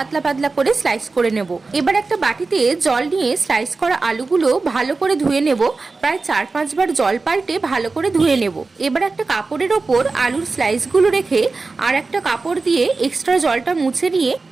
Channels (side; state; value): left; quieter; 3.9 dB